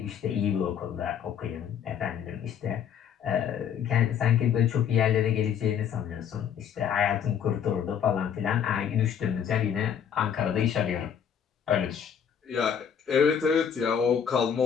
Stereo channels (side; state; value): right; quieter; 8.2 dB